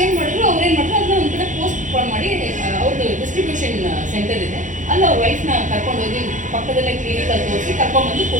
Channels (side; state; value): left; late; 0.37 ms